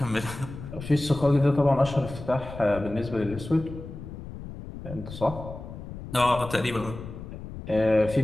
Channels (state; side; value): noise; left; rumble, 11 dB below the sound